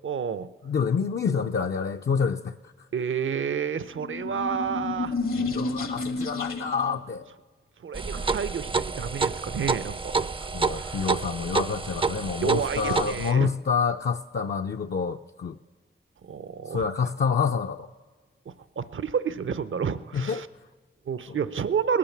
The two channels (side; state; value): both; normal; correlation 0.26